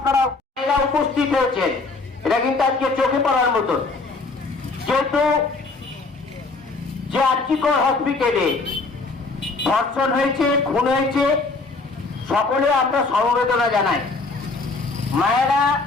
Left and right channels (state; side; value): quieter; right; 3.7 dB